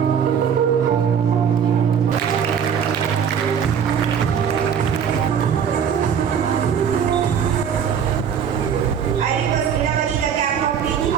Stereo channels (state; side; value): quieter; left; 7.7 dB